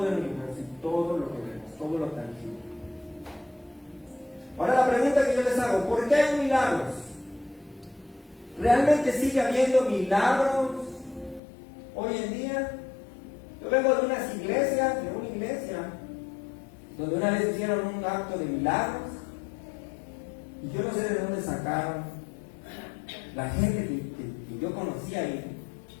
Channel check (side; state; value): right; drops out; at 11.4 s